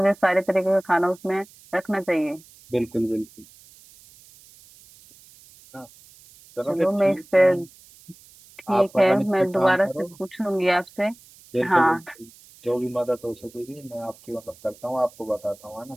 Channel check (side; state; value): right; noise; hiss, 24 dB below the sound